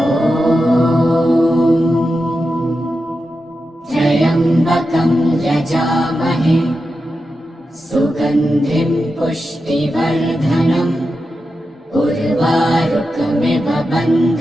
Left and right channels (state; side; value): normal; both; correlation 0.90